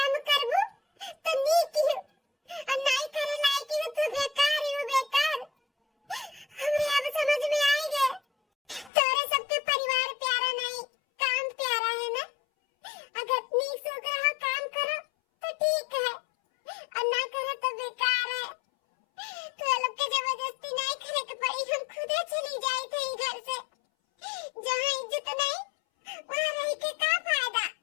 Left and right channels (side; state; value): right; drops out; at 8.9 s